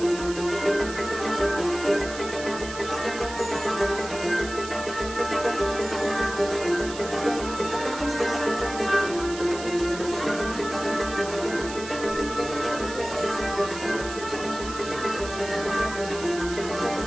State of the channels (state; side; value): noise; right; hiss, 12 dB below the sound